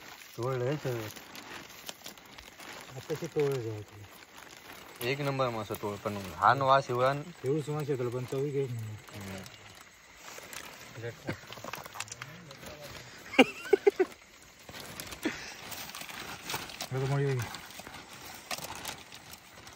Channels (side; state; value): both; identical; correlation 1.00